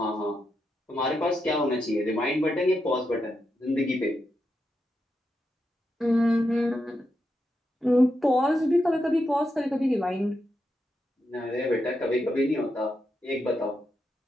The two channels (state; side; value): normal; both; correlation 0.85